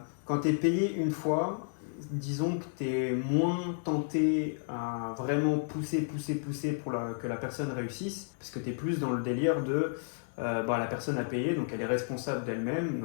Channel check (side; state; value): right; silent; digital silence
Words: tu es payé une fois, disons que tu es moins tenté à vraiment pousser pour que la personne réussisse, parce que tu es plus dans le délire de la personne a payé, donc elle est responsable d'elle-même,